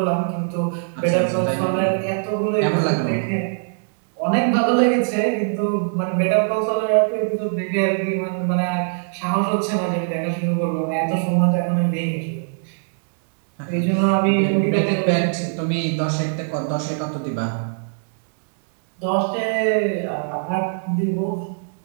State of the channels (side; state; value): left; silent; 65 dB below the other